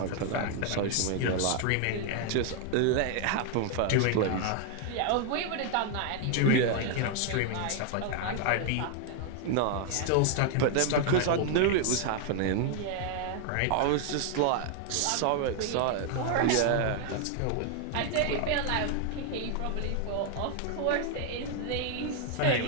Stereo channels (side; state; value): both; different; correlation 0.00